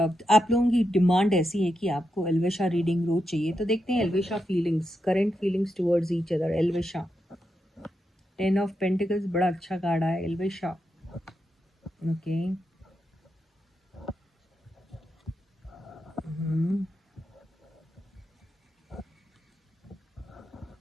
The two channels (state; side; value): normal; both; correlation 0.85